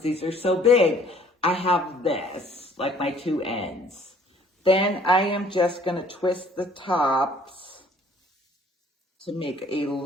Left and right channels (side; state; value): both; normal; correlation 0.57